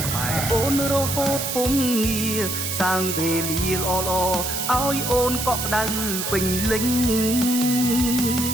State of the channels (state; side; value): noise; right; hiss, 3 dB below the sound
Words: ក្បែរអូនរហូតពុំងារសាងវេលាល្អៗឲ្យអូនកក់ក្ដៅពេញលេញ